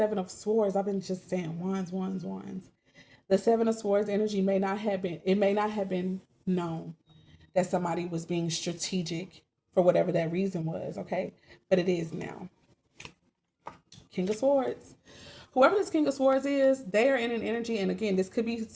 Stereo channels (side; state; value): both; identical; correlation 1.00